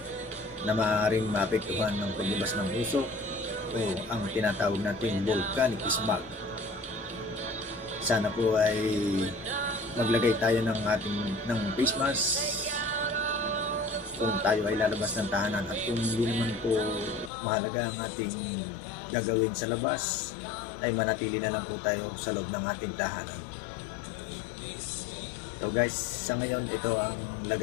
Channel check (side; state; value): right; drops out; at 17.3 s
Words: na maaaring maapektuhan ng paglabas ng usok o ang tinatawag natin volcanic smog. Sana po ay maglagay tayo ng face mask kung tayo ay lalabas ng tahanan, at kung hindi naman po mahalaga ang ating gagawin sa labas, ay manatili na lang po tayo sa loob ng ating tahanan. So guys, sa ngayon ito ang